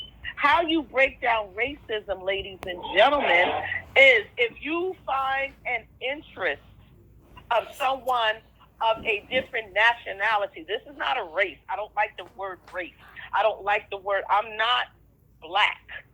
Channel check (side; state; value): both; identical; correlation 1.00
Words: How you break down racism, ladies and gentlemen, is if you find an interest of someone of a different nationality. This is not a race. I don't like the word race. I don't like the word. I'm not black,